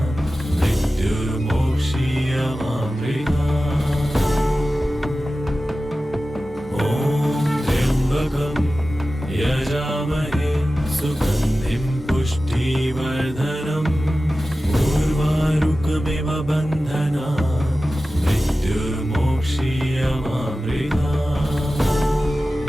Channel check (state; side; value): normal; both; correlation 0.95